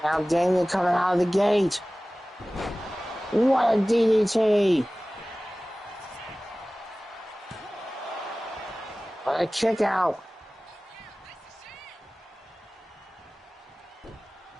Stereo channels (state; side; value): normal; both; correlation 0.98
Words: Now Damien coming out of the gate. What a DDT. What a kick out.